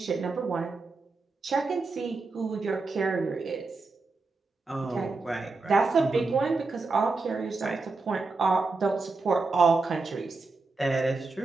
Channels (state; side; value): quieter; left; 3.8 dB